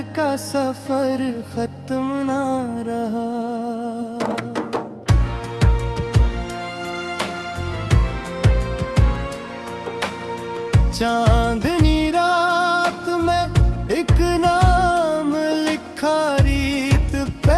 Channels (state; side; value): identical; both; correlation 1.00